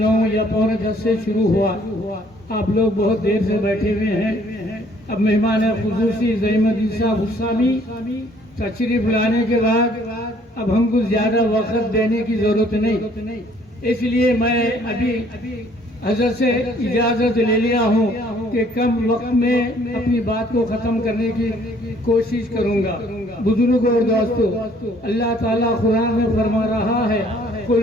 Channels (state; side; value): normal; both; correlation 0.61